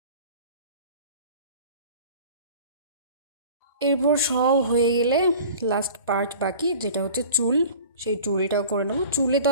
এরপর সব হয়ে গেলে লাস্ট পার্ট বাকি, যেটা হচ্ছে চুল। সেই চুলটাও করে নেবো। চুলে তো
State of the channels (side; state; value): both; inverted; correlation -0.43